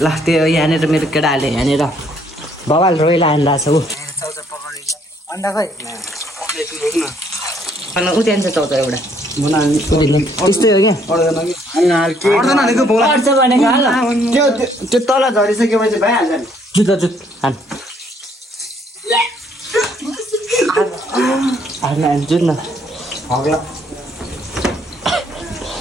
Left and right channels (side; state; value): both; normal; correlation 0.66